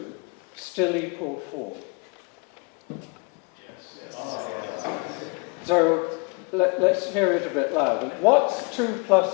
still equal 4? Yes. So let's hear it a bit louder. What's 2 plus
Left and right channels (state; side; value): quieter; right; 31.5 dB